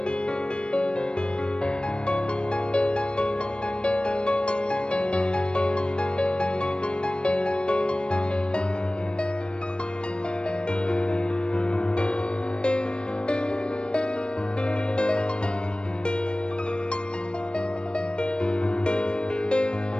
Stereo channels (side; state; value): right; late; 0.052 ms